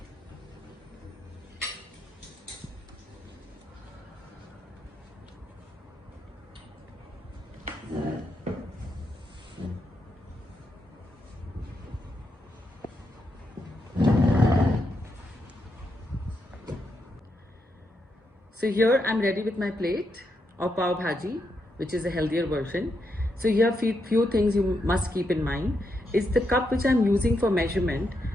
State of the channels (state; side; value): normal; both; correlation 0.82